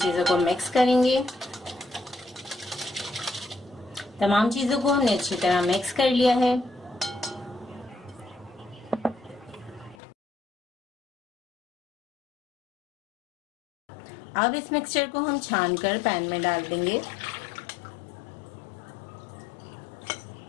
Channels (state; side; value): drops out; right; at 10.0 s